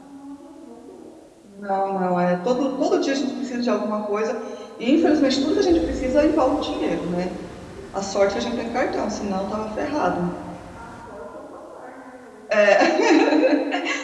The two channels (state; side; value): identical; both; correlation 1.00